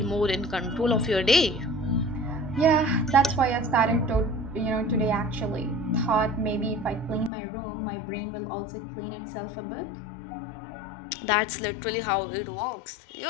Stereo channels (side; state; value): right; drops out; at 7.3 s